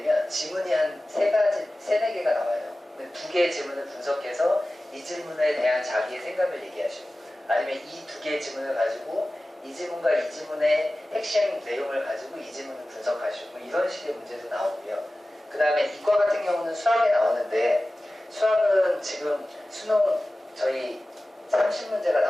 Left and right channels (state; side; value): normal; both; correlation 0.96